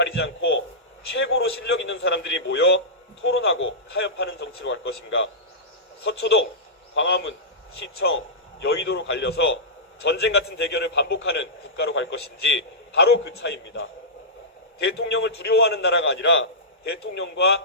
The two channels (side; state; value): both; normal; correlation -0.15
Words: 않고 최고로 실력 있는 사람들이 모여 토론하고 타협하는 정치로 갈 것인가? 서초동, 광화문, 시청, 여의도로 갈려서 전쟁 같은 대결을 반복하는 국가로 갈 것인지 바로 그 차이입니다. 대통령을 두려워하는 나라가 아니라